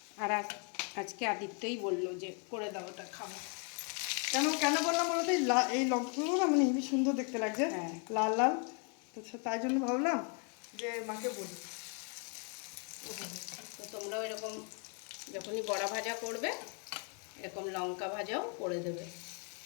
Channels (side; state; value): right; quieter; 39.2 dB